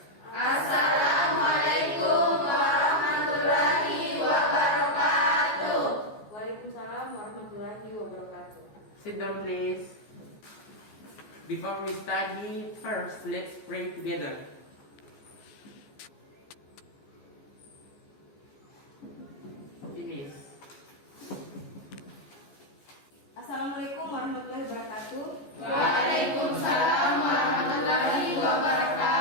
Assalamualaikum warahmatullahi wabarakatuh. Waalaikumsalam warahmatullahi wabarakatuh. Sit down please. Before we study, first let's pray together. Finish. Assalamualaikum warahmatullahi wabarakatuh. Waalaikumsalam warahmatullahi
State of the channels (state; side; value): late; right; 14 ms